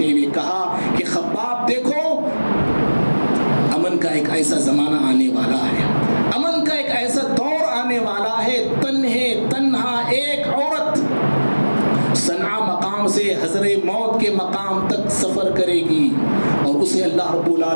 ہوئے کہا کہ خباب دیکھو، امن کا ایک ایسا زمانہ آنے والا ہے، امن کا ایک ایسا دور آنے والا ہے، تنہا ایک عورت صنعاء مقام سے حضر موت کے مقام تک سفر کرے گی اور اسے اللہ رب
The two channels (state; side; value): inverted; both; correlation -1.00